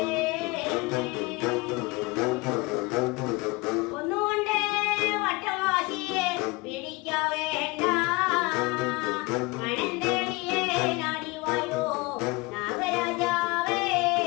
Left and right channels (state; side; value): quieter; right; 24.5 dB